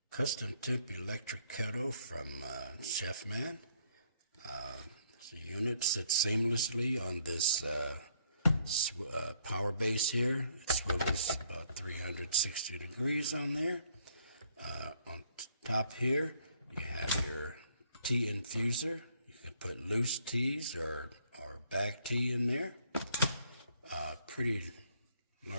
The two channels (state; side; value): inverted; both; correlation -0.67